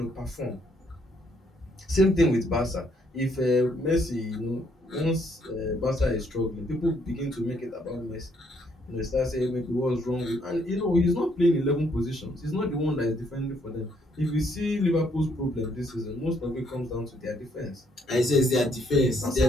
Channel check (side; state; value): both; normal; correlation 0.70